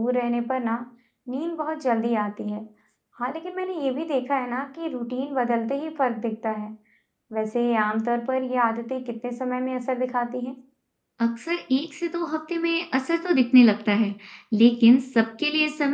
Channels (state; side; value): identical; both; correlation 1.00